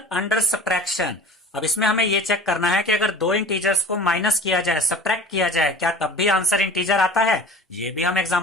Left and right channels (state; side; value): normal; both; correlation 0.40